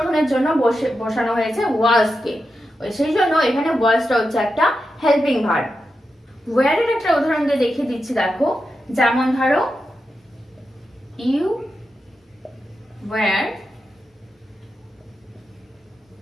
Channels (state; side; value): normal; both; correlation 0.88